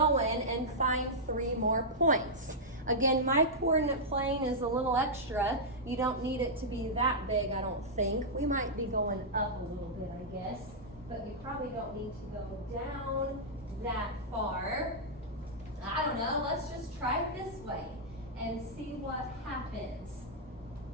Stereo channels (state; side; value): normal; both; correlation -0.09